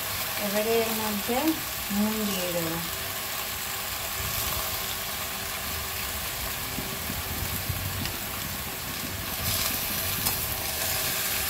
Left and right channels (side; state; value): both; identical; correlation 1.00